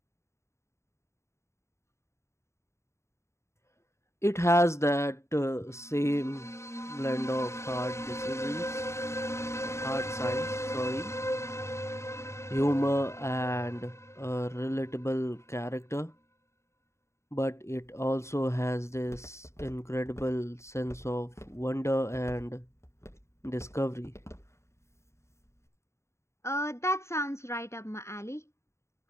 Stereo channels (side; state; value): right; late; 0.13 ms